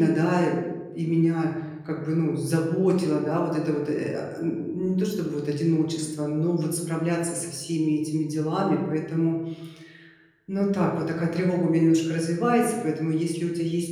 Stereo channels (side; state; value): both; identical; correlation 1.00